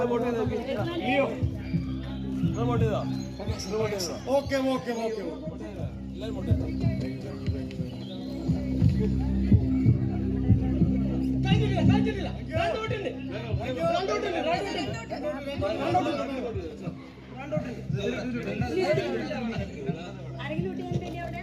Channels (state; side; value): identical; both; correlation 1.00